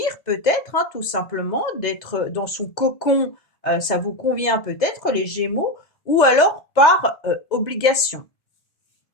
peut-être, tout simplement, d'être dans son cocon, ça vous convient peut-être les Gémeaux, ou alors par obligation.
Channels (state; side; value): late; right; 2.0 ms